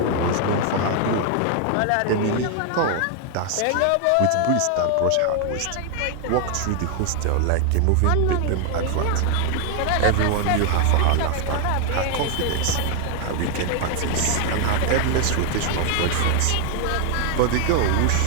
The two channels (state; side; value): different; both; correlation 0.00